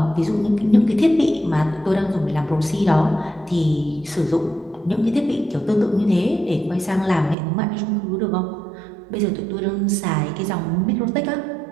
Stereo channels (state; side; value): drops out; left; at 7.4 s